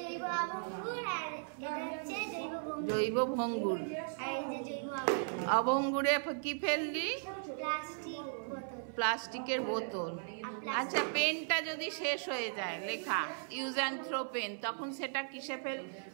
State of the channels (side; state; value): left; silent; 53 dB below the other